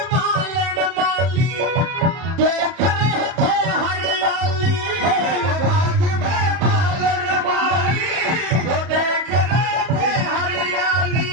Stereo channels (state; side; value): late; left; 31 ms